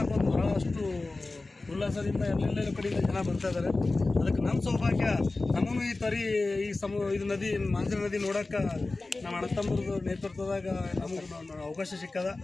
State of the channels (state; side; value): quieter; right; 3.3 dB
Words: ಒಂದು ಭಾಳಷ್ಟು ಉಲ್ಲಾಸದಿಂದ ಎಲ್ಲೆಲ್ಲ ಕಡೆಯಿಂದ ಜನ ಬರ್ತಾ ಇದ್ದಾರೆ. ಅದಕ್ಕೆ ನಮ್ಮ ಸೌಭಾಗ್ಯ, ನಮಗೂ ಈ ನದಿ ಮಾಂಜನ ನದಿ ನೋಡೋಕೆ ನಮ್ಮ ಅಣ್ಣತಮ್ಮರದು ನೇತೃತ್ವದಾಗ ನಮಗೆ ಅವಕಾಶ ಸಿಕ್ಕದ.